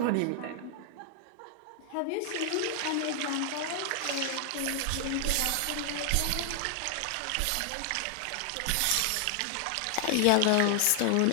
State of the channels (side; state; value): both; different; correlation 0.00